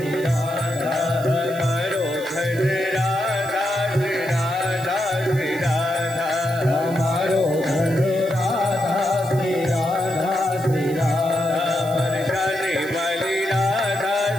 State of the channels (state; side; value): noise; right; hiss, 17 dB below the sound